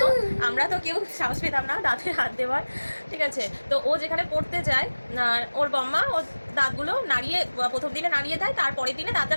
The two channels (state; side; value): inverted; both; correlation -1.00